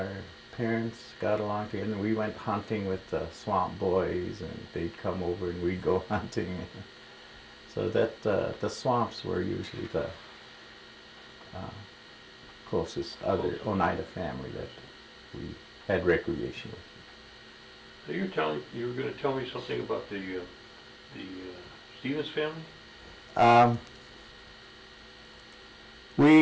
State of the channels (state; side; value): identical; both; correlation 1.00